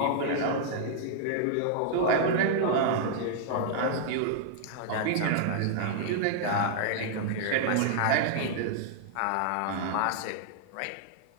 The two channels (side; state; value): both; different; correlation -0.01